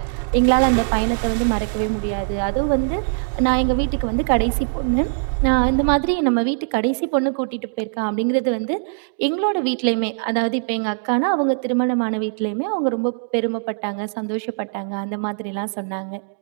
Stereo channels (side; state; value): left; silent; digital silence